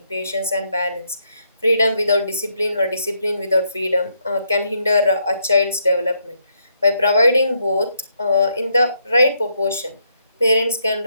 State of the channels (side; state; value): both; inverted; correlation -0.76